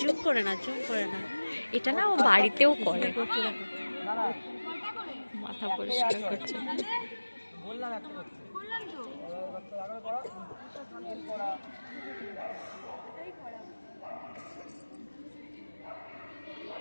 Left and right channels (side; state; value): both; inverted; correlation -1.00